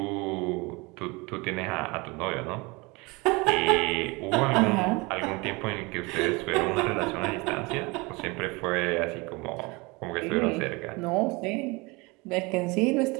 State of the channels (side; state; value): left; quieter; 25.9 dB